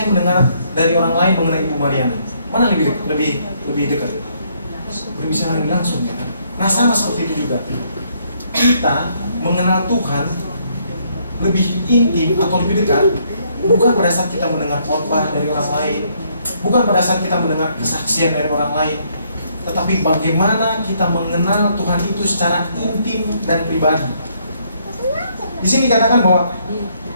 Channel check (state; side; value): inverted; both; correlation -0.70